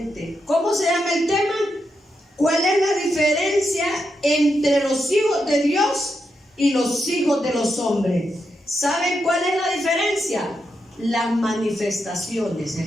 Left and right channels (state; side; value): normal; both; correlation 0.84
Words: ¿Cómo se llama el tema? ¿Cuál es la diferencia entre los hijos de Dios y los hijos de los hombres? ¿Saben cuál es la diferencia? Las manifestaciones es